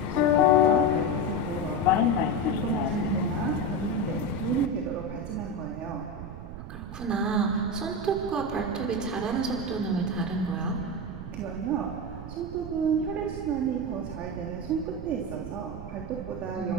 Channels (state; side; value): noise; right; rumble, 10 dB below the sound